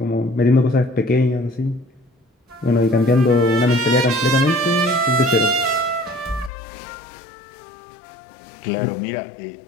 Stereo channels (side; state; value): right; drops out; at 6.5 s